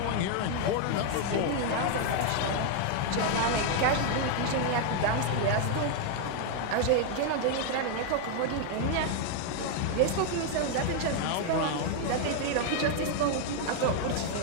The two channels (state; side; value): different; both; correlation 0.00